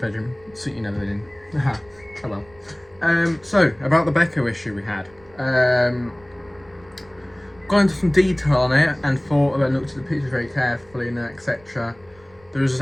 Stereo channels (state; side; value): noise; right; rumble, 28 dB below the sound